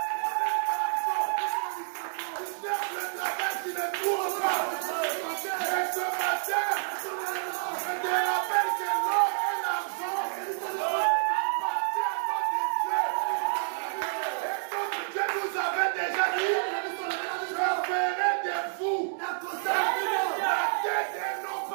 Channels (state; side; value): silent; left; digital silence